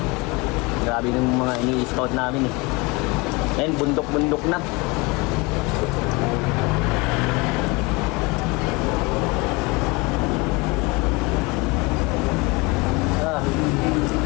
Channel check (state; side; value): quieter; right; 25.6 dB